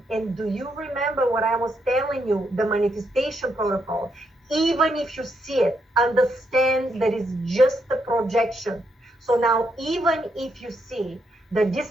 And do you remember what I was telling you? The manifestation protocol. Even if you see it, understand that it's just a projection. So now, even if you see that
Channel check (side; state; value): both; normal; correlation 0.79